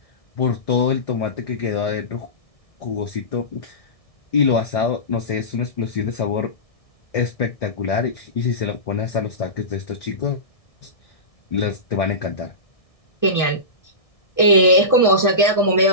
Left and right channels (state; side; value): late; right; 1.6 ms